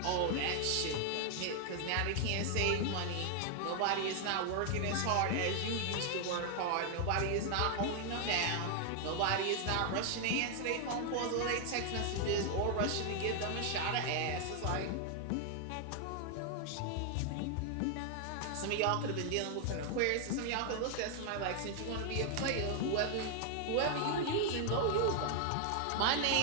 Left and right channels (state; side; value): different; both; correlation 0.00